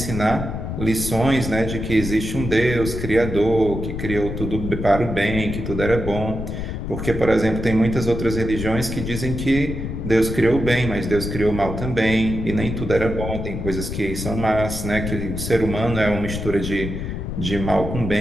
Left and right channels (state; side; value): noise; left; rumble, 5 dB below the sound